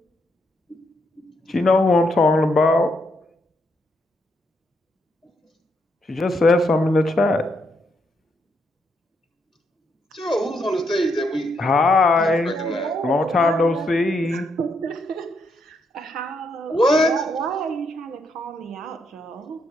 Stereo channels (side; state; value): both; normal; correlation 0.77